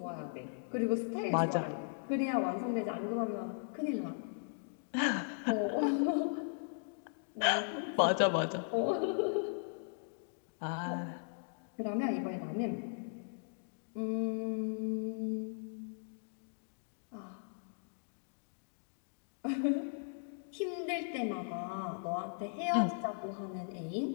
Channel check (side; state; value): right; silent; digital silence